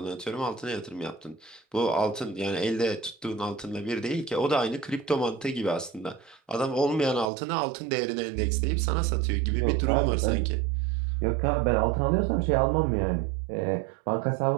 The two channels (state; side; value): drops out; left; at 7.3 s